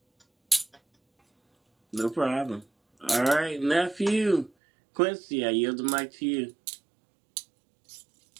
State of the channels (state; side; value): drops out; left; at 4.5 s